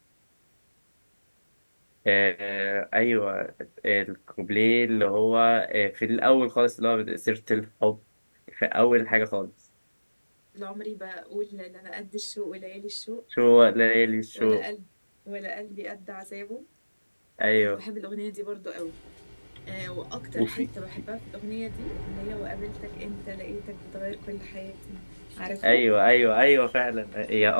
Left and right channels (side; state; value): both; inverted; correlation -1.00